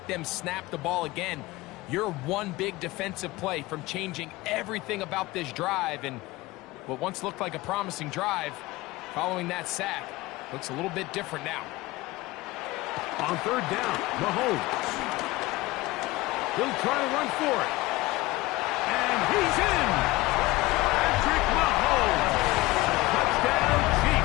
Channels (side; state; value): right; quieter; 19.9 dB